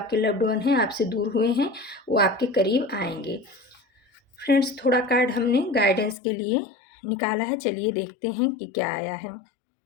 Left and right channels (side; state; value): right; drops out; at 6.2 s